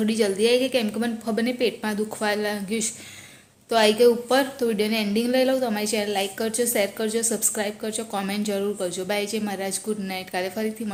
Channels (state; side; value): identical; both; correlation 1.00